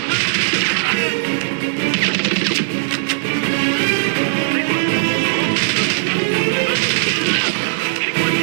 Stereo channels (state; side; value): silent; left; digital silence